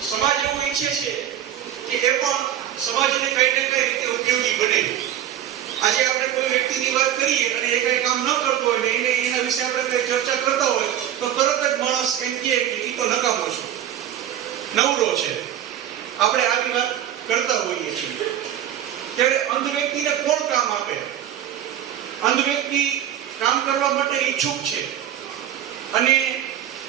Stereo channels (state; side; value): quieter; left; 10.9 dB